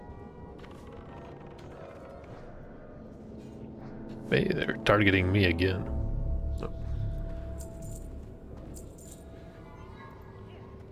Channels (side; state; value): both; identical; correlation 1.00